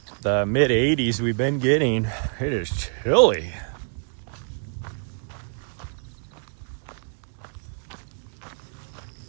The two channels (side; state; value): left; silent; 58 dB below the other